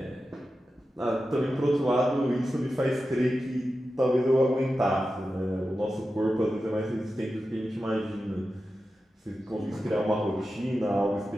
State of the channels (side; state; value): both; normal; correlation 0.92